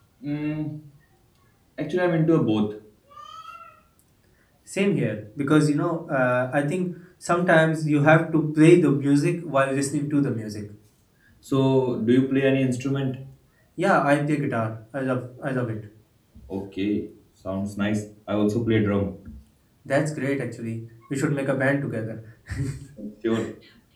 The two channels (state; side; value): identical; both; correlation 1.00